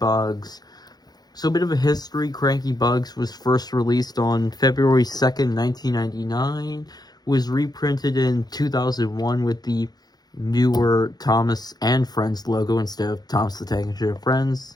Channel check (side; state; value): right; late; 0.19 ms